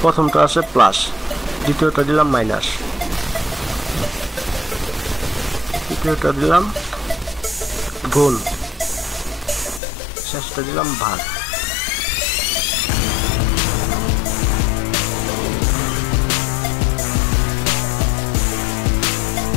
প্রথমটা আছে প্লাস, দ্বিতীয়টা দিলাম মাইনাস, তৃতীয়টা দিলাম গুণ, শেষটা দিলাম ভাগ।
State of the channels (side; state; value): right; drops out; at 9.8 s